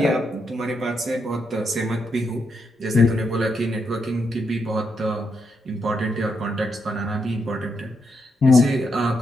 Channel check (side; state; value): both; normal; correlation 0.81